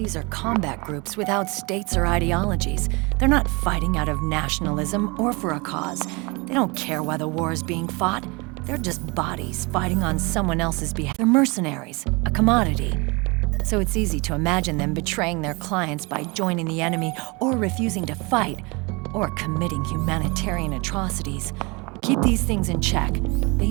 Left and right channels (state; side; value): quieter; left; 27.6 dB